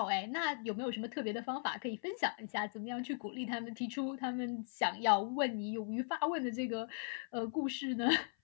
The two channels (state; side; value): silent; right; 52 dB below the other